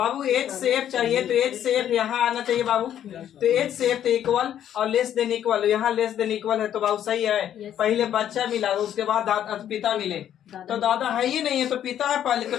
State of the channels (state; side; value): quieter; right; 10.5 dB